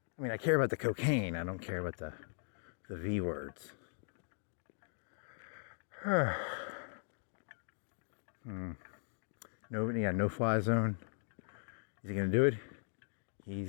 I mean, I care about the cocaine. I don't care about the V words. No fly zone. Is he gonna do it?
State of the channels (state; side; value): silent; right; digital silence